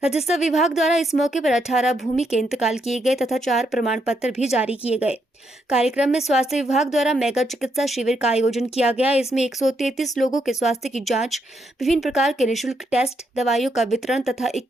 राजस्व विभाग द्वारा इस मौके पर 18 भूमि के इंतकाल किए गए तथा 4 प्रमाण पत्र भी जारी किए गए। कार्यक्रम में स्वास्थ्य विभाग द्वारा मेगा चिकित्सा शिविर का आयोजन किया गया। इसमें 133 लोगों के स्वास्थ्य की जांच, विभिन्न प्रकार के निःशुल्क टेस्ट, दवाइयों का वितरण तथा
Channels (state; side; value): normal; both; correlation 0.78